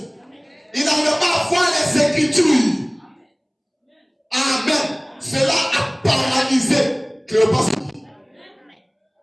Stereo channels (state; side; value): identical; both; correlation 1.00